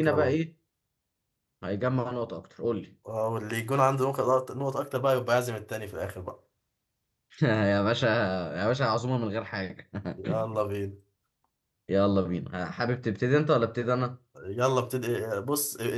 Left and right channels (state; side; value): identical; both; correlation 1.00